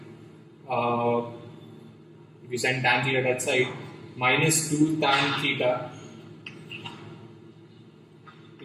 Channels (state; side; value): identical; both; correlation 1.00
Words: if you send tan theta that side, minus 2 tan theta